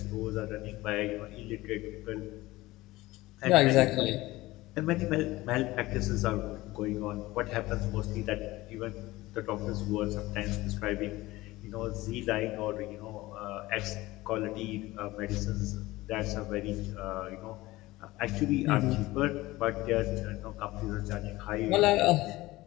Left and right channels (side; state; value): right; quieter; 18.9 dB